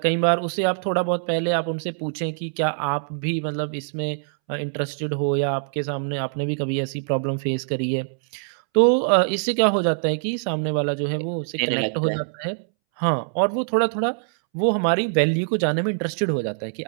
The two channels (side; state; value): left; silent; 63 dB below the other